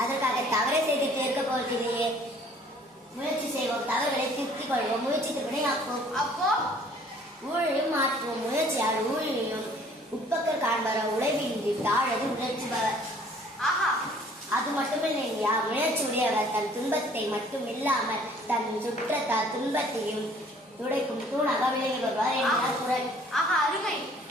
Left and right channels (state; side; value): normal; both; correlation 0.56